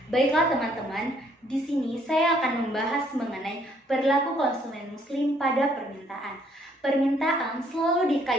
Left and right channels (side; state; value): both; normal; correlation 0.66